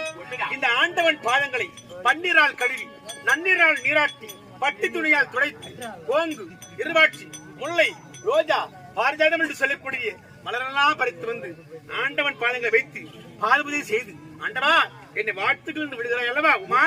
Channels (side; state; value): both; identical; correlation 1.00